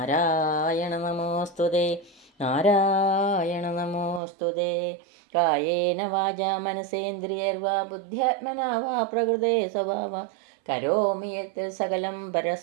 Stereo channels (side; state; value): left; drops out; at 4.2 s